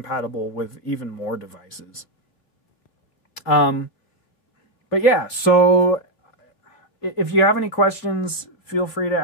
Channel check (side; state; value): right; late; 3.2 ms